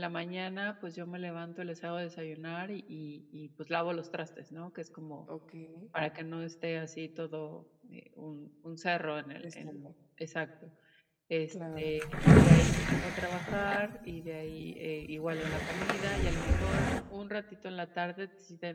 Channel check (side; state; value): both; identical; correlation 1.00